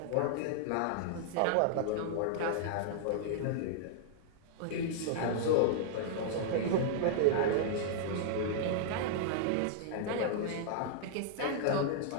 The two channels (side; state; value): both; different; correlation -0.01